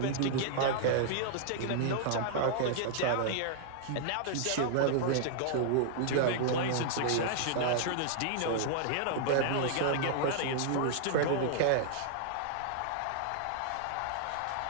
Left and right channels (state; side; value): different; both; correlation -0.01